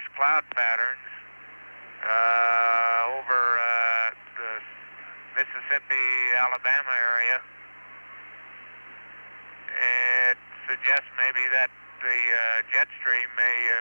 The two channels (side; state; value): both; inverted; correlation -1.00